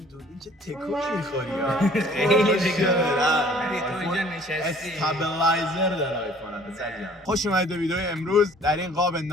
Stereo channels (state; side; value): normal; both; correlation 0.54